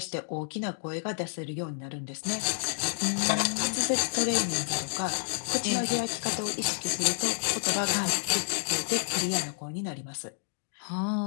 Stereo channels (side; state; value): right; silent; digital silence